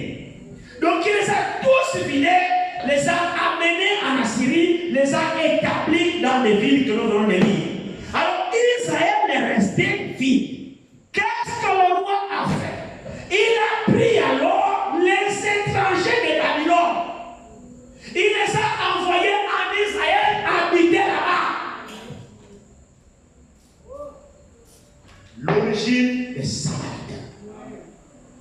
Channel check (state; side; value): identical; both; correlation 1.00